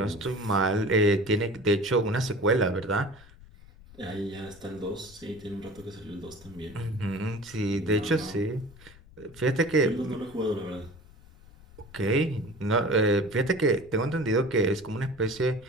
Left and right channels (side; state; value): left; noise; rumble, 22 dB below the sound